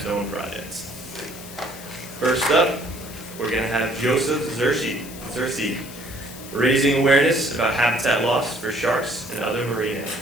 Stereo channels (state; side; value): noise; left; hiss, 15 dB below the sound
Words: projects. First up, we're going to have Joseph Searcy, raising awareness about habitat loss for sharks and other marine